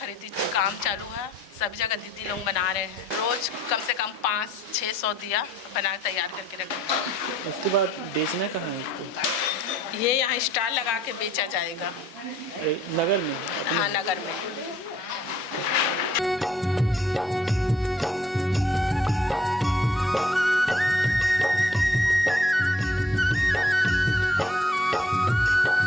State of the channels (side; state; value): both; normal; correlation 0.63